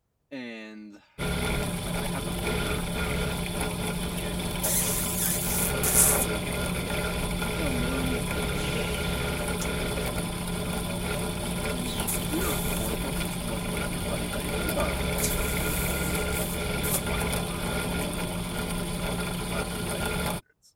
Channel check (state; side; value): identical; both; correlation 1.00